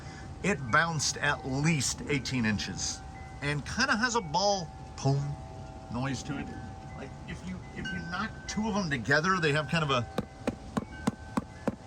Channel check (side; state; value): both; identical; correlation 1.00